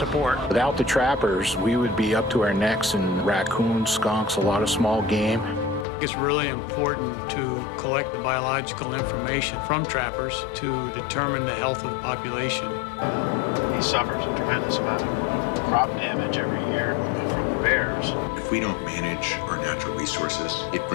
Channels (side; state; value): right; drops out; at 5.9 s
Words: Without the trappers, we would be up to our necks in raccoons, skunks, a lot of small game. It's really important to collect the biological information from trappers to determine the health of the population. He suffers a tremendous amount of crop damage every year from the bears. If we don't manage our natural resources, it